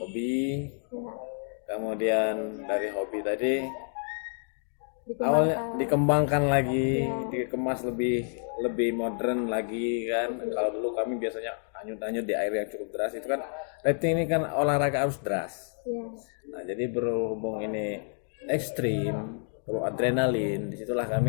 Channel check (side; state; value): right; silent; 58 dB below the other